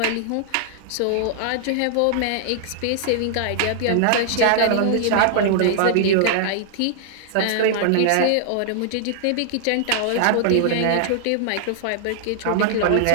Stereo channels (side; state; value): both; different; correlation -0.01